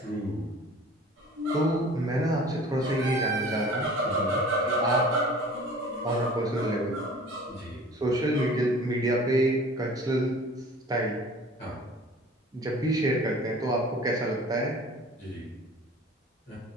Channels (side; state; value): both; normal; correlation 0.46